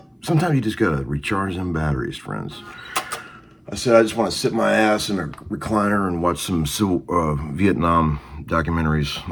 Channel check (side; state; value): both; identical; correlation 1.00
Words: sometimes you just gotta recharge them batteries, friends. I said I just want to sit my ass in a recliner and watch some Vietnam documentaries